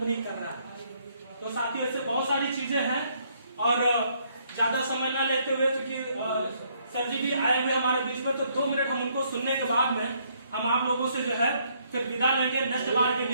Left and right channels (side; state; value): both; inverted; correlation -0.68